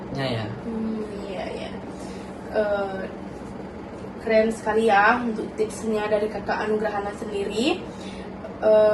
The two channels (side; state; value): both; identical; correlation 1.00